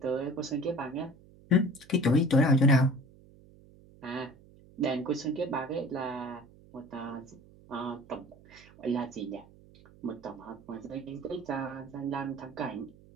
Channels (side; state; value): right; noise; hum, 24 dB below the sound